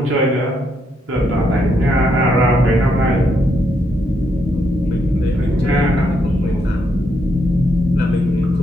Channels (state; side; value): normal; both; correlation 0.77